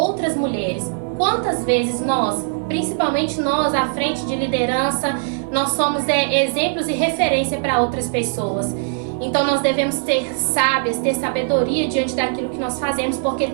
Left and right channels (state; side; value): silent; left; digital silence